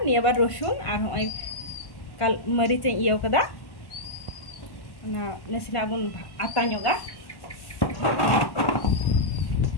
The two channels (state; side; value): late; right; 1.1 ms